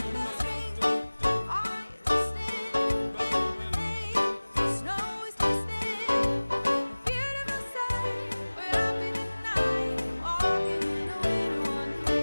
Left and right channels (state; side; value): inverted; both; correlation -1.00